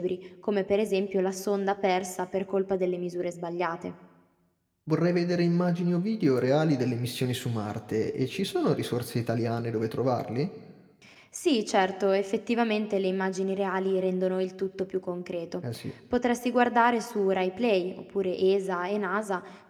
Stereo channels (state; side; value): identical; both; correlation 1.00